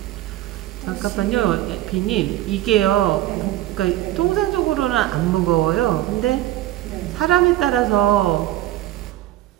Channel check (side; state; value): left; quieter; 14.8 dB